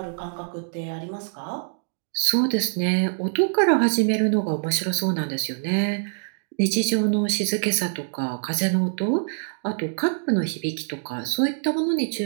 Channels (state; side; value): silent; left; digital silence